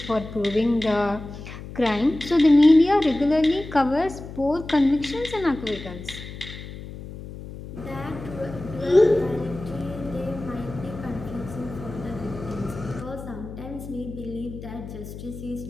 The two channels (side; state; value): left; noise; hum, 12 dB below the sound